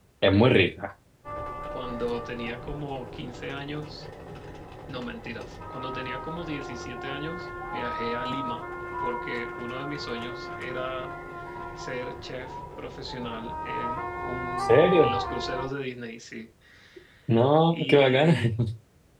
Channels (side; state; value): both; identical; correlation 1.00